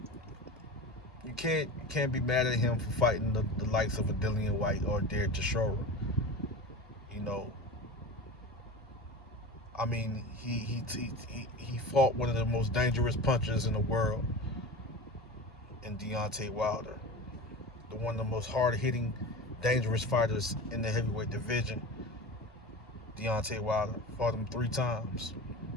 you can't be mad at him for fighting the likes of a Dillian White or Derek Chisora. You know, I mean, he fought one of the most dangerous punchers in the world, in Deontay Wilder, one of the most hard-hitting, dangerous fighters in the heavyweight division. Deontay Wilder fought him 3 times.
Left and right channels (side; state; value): both; normal; correlation 0.30